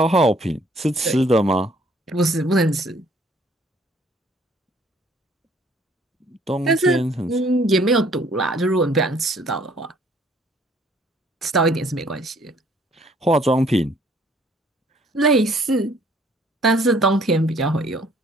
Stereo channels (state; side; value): normal; both; correlation 0.61